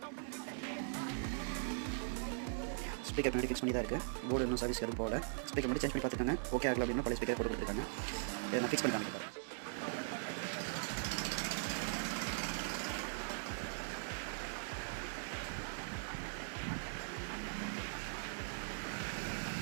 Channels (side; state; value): left; silent; digital silence